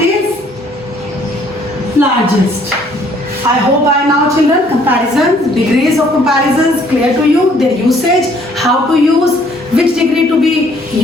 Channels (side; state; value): both; normal; correlation 0.62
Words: largest. I hope by now, children, comparisons, degrees of comparisons clear to you, their usage, how to use, which degree to be